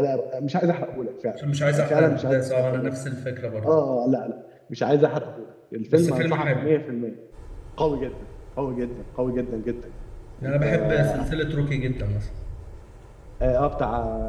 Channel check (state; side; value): identical; both; correlation 1.00